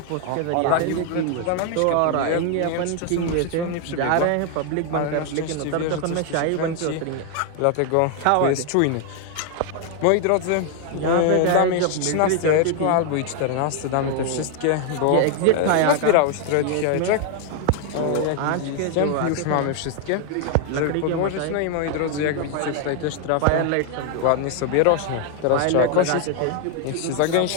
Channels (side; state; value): both; different; correlation 0.00